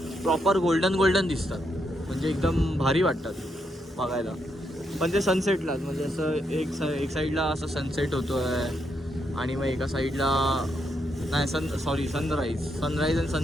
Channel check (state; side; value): normal; both; correlation 0.79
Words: प्रॉपर गोल्डन दिसतात. म्हणजे एकदम भारी वाटतात बघायला. पण ते सनसेटलाच, म्हणजे असं एक साईडला असं सनसेट होतो आहे, आणि मग एका साईडला नाही सनराईज आणि